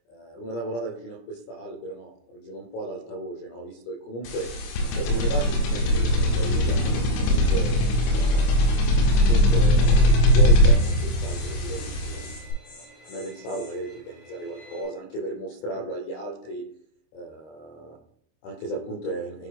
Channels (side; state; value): right; late; 26 ms